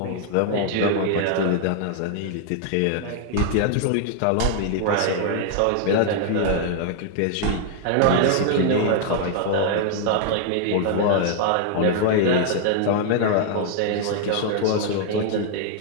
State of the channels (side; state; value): both; different; correlation 0.00